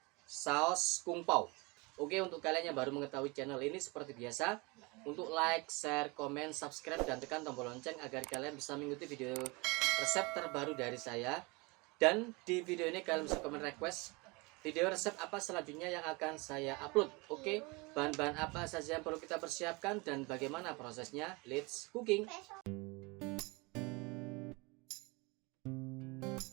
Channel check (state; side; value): quieter; left; 26.8 dB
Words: saus kung pao. Oke, untuk kalian yang baru mengetahui channel ini seperti biasa, untuk like, share, komen, subscribe, dan tekan tombol lonceng agar kalian bisa mengikuti video resep terbaru dari saya. Dan di video ini kalian bisa komen request video resep apa selanjutnya yang akan saya upload. Oke, bahan-bahan apa saja yang perlu kita persiapkan dan bagaimana prosesnya. Let's cooking.